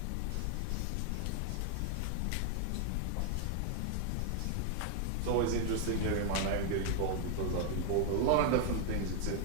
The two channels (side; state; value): both; different; correlation 0.00